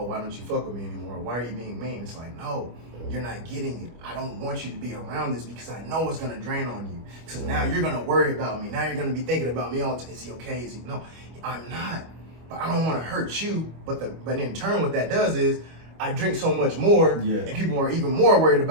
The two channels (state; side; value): late; left; 25 ms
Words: why don't you fuck with me anymore? Why are you being mean? It's like, no, you're not getting it. I don't want you to be around this because I know it's gonna drain on you. Because now you're gonna worry about me. Now you're gonna be thinking about me all the time. Is he okay? Is he? No, I'm not. But I don't want to hurt you. But in turn, what that does is I drink so much more, and people are even more worried